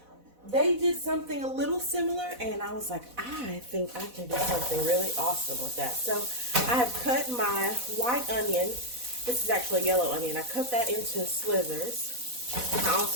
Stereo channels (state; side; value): late; left; 4.1 ms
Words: they did something a little similar, and I was like, I think I can do something really awesome with that. So I have cut my white onion. This is actually a yellow onion. I cut that into slivers. I